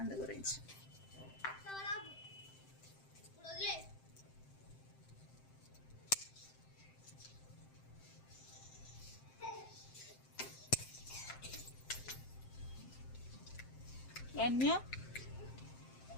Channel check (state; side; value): late; right; 7.7 ms